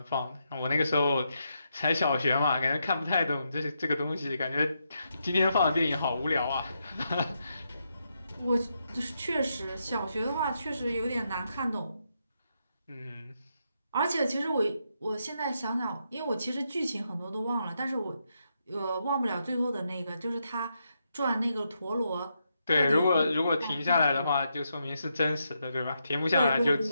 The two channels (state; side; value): inverted; both; correlation -0.81